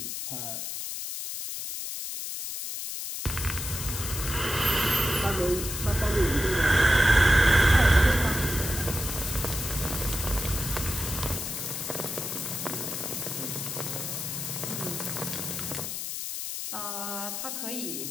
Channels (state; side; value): noise; left; hiss, 5 dB below the sound